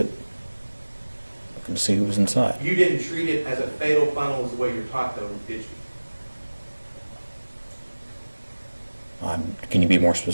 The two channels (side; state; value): both; inverted; correlation -1.00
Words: looking to see who was inside. You didn't treat it as a fatal funnel as the way you're taught, though, did you? Can you be more